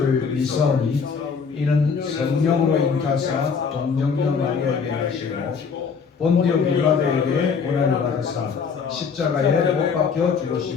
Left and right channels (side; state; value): right; quieter; 5.8 dB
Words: 믿사오니 이는 성령으로 잉타사 동정녀 마리아에게 하시고 본디오 빌라도에게 고난을 받으사 십자가에 못 박혀